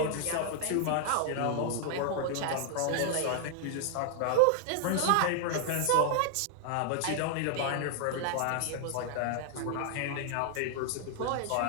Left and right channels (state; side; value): different; both; correlation 0.00